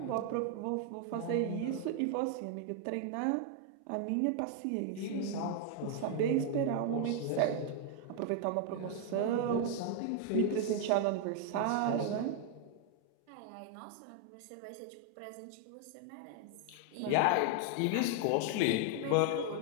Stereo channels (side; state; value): both; different; correlation 0.00